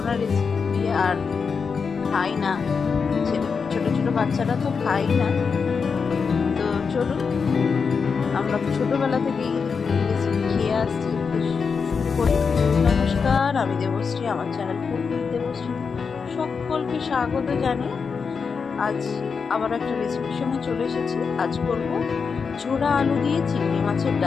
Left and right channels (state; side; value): quieter; right; 5.6 dB